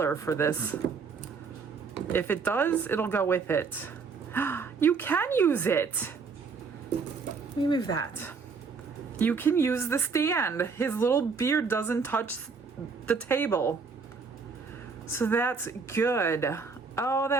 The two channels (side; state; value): left; quieter; 5.1 dB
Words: for this. If it does, it'll go with it. You can use it. Let me move that. You can use the stand. His little beard doesn't touch the table. So that's good. Oh,